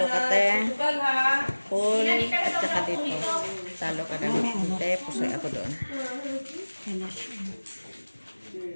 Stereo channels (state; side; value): inverted; both; correlation -1.00